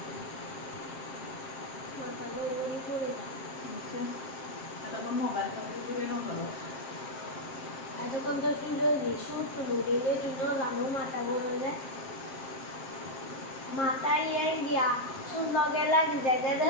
মাথা গড়গড়ি করে দাও এতক্ষণ তো শুরু সুর তুলু দিলে তুই জানো মাথা গড়ে যায় মাথায় গিয়া সুর লগে লাগি জায়গাটা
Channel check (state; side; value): late; right; 7.5 ms